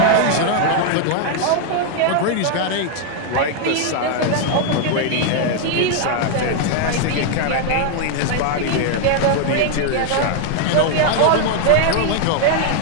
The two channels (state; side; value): different; both; correlation 0.00